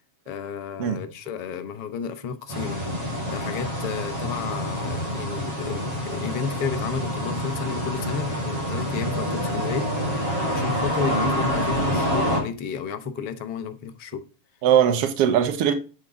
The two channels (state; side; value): late; left; 7.3 ms